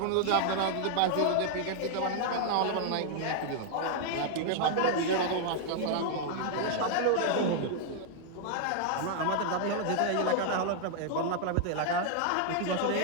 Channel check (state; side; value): different; both; correlation 0.00